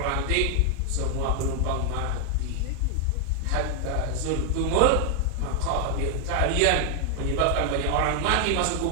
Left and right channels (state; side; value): different; both; correlation 0.00